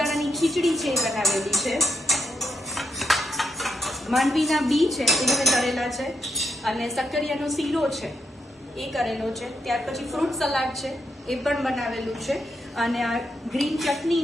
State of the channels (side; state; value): both; normal; correlation 0.78